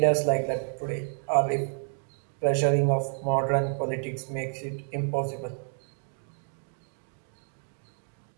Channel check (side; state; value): left; silent; 58 dB below the other